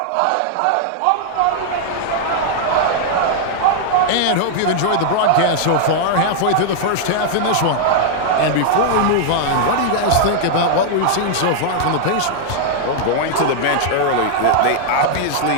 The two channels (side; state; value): both; different; correlation -0.01